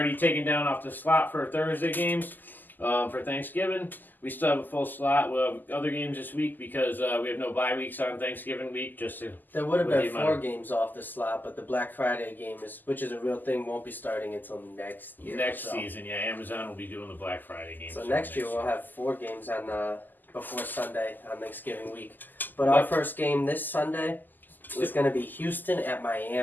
taken down off the slot for Thursday games for Thanksgiving. We still have a full slot. We'll have other games this week because we have no bye weeks on Thanksgiving week. There would have been 4 games off the slot, but the Black Friday game, which is a real thing, won't be starting until next year. Next season, yeah. Amazon will be doing the Black Friday game. So next year we'll have 4 games on before Sunday on Thanksgiving week. But our first game this Sunday is going to be Houston at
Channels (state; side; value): late; right; 0.087 ms